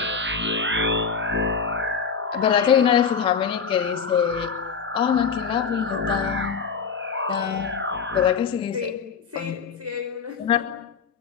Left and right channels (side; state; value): right; quieter; 6.0 dB